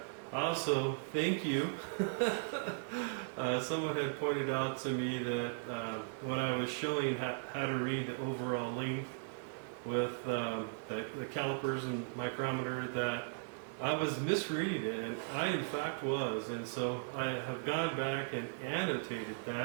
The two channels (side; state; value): left; silent; digital silence